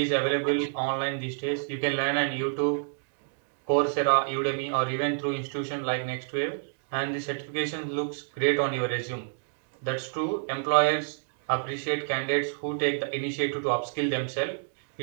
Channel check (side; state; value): left; silent; digital silence